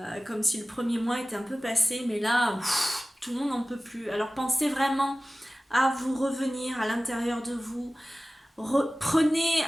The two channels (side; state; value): both; normal; correlation 0.97